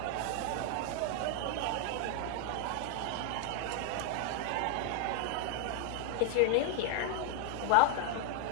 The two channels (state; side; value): different; both; correlation 0.00